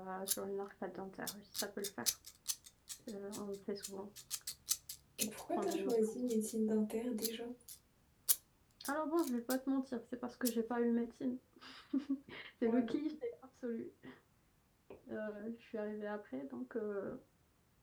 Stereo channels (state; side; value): identical; both; correlation 1.00